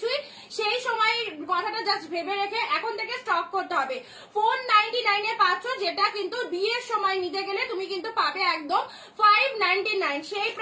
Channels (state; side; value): identical; both; correlation 1.00